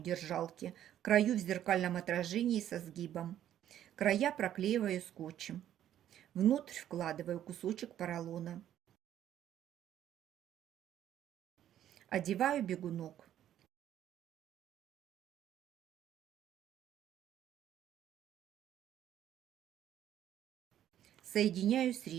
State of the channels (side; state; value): left; quieter; 11.2 dB